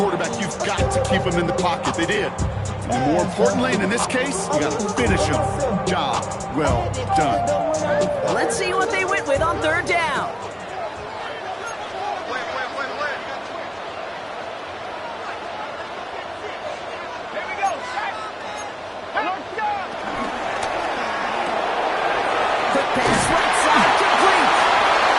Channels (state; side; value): identical; both; correlation 1.00